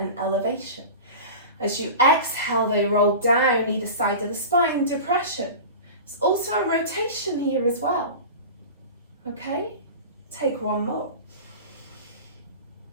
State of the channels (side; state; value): both; inverted; correlation -0.32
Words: elevation. As you exhale, they roll down either side of the spine, depression. It's also a rotation here as well. Okay, take one more.